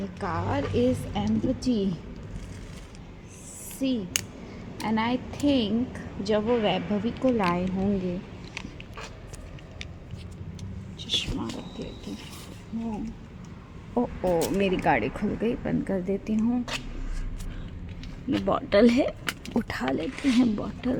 car is empty. See, and I think जब वो वैभवी को लाए होंगे, चश्मा रख लेती हूँ। ओ मेरी गाड़ी खुल गई, बंद कर देती हूँ। ये बॉटल है, उठा लेते हैं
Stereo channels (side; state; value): both; identical; correlation 1.00